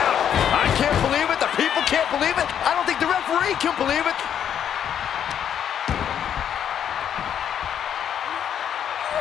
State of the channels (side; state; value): right; quieter; 9.1 dB